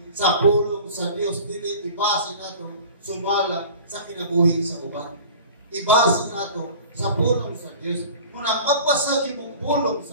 sa pulong sa Diyos, dili ibase natin sumala sa kinabuhi sa uban. Ibase natin sa pulong sa Diyos. Muna magpasagi mong pulong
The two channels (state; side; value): inverted; both; correlation -0.41